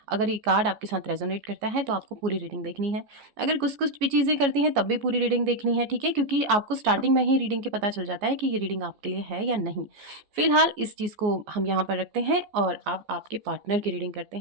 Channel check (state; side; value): late; left; 14 ms